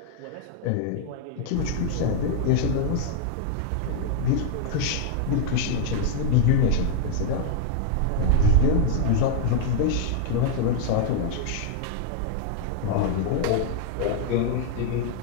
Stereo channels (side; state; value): both; different; correlation 0.00